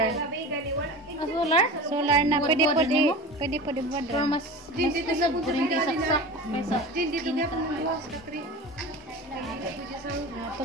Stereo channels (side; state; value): both; normal; correlation 0.32